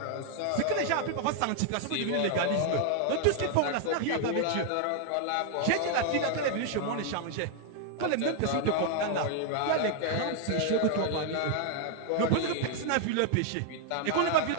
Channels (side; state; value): both; different; correlation 0.00